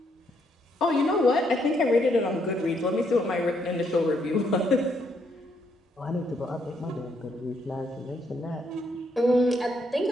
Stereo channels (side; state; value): both; normal; correlation 0.73